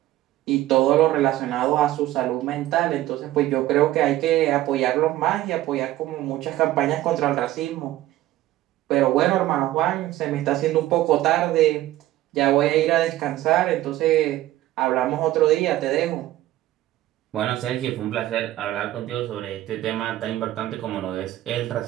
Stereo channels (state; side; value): quieter; left; 15.0 dB